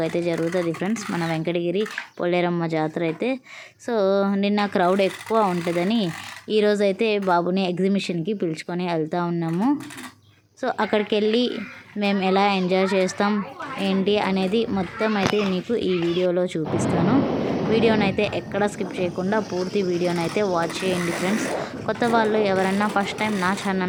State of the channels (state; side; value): identical; both; correlation 1.00